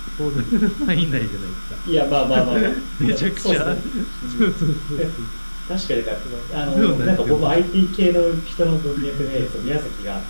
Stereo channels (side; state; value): both; inverted; correlation -1.00